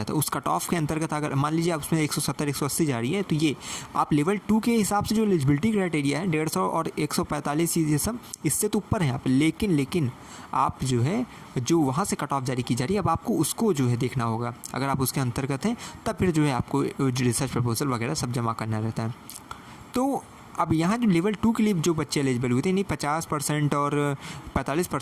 है। उस कट ऑफ के अंतर्गत अगर मान लीजिए आप उसमें 170, 180 जा रही है, तो ये आप लेवल 2 के हिसाब से जो एलिजिबिलिटी क्राइटेरिया है 150 और 145, ये सब इससे तो ऊपर हैं आप। लेकिन आप जो वहाँ से कट ऑफ जारी की जा रही है, अब आपको उसको देखना होगा। अगर आप उसके अंतर्गत हैं तब फिर आपको रिसर्च प्रपोजल वगैरह सब जमा करना रहता है। तो अब यहाँ जो लेवल 2 के लिए जो बच्चे एलिजिबल हुए थे, यानी 50% और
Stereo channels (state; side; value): identical; both; correlation 1.00